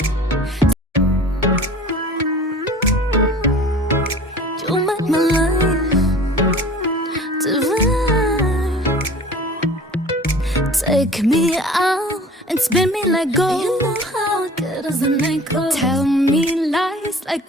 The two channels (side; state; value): both; normal; correlation 0.44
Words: You make my life divine. Take me out and spin me like gold. You know how good as a night goes. Tell me lies